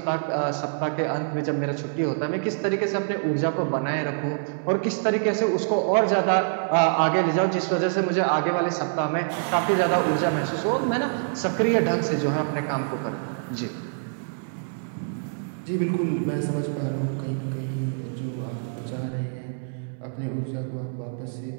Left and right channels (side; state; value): left; silent; digital silence